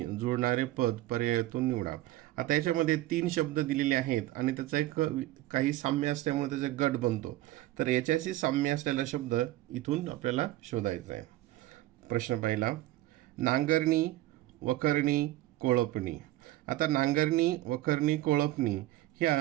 जुळणारे पद पर्यायातून निवडा. आता याच्यामध्ये 3 शब्द दिलेले आहेत आणि त्याचा एक काही साम्य असल्यामुळे त्याचा गट बनतो. तर याच्याशी साम्य असलेला शब्द इथून आपल्याला शोधायचा आहे. प्रश्न पहिला: नांगरणी, वखरणी, कोळपणी. आता नांगरणी, वखरणी, कोळपणी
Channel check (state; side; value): quieter; left; 16.0 dB